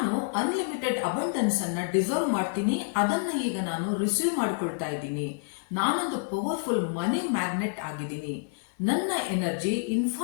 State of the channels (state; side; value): silent; right; digital silence